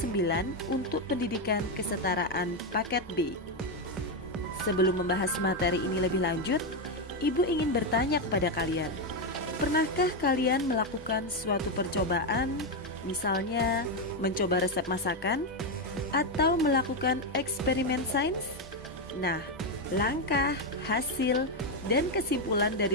9 untuk pendidikan kesetaraan paket B. Sebelum membahas materi ini lebih lanjut, Ibu ingin bertanya kepada kalian, pernahkah kalian melakukan suatu percobaan, misalnya mencoba resep masakan, atau melakukan eksperimen sains? Nah, langkah, hasil, dan kesimpulan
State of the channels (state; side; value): normal; both; correlation 0.06